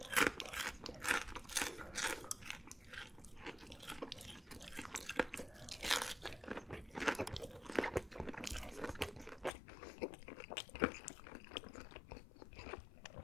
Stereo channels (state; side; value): drops out; right; at 9.5 s